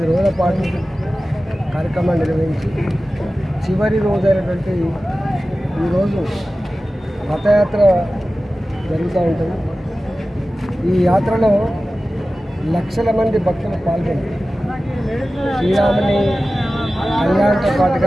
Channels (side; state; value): both; normal; correlation 0.95